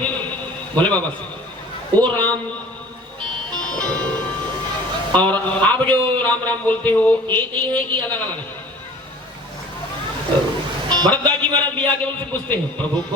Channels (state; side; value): normal; both; correlation 0.46